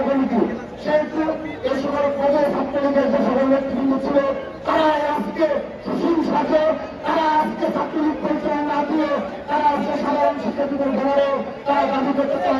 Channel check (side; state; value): both; identical; correlation 1.00